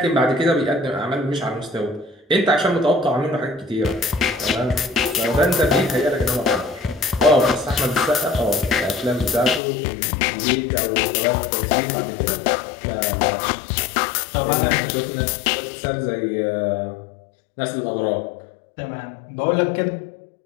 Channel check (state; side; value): drops out; right; at 9.6 s